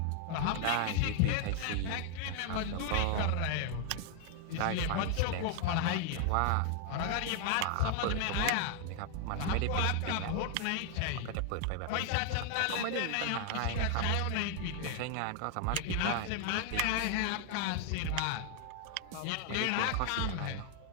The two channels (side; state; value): both; different; correlation 0.00